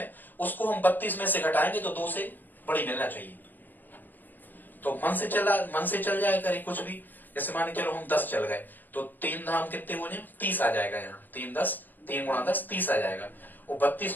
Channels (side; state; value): right; late; 0.088 ms